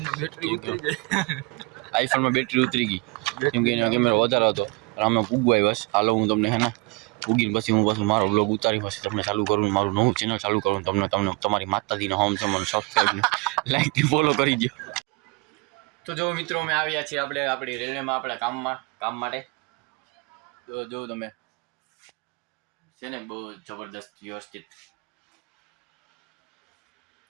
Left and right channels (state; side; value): quieter; left; 27.2 dB